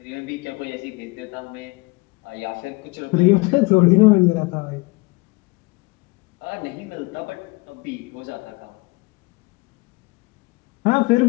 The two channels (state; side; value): quieter; right; 25.7 dB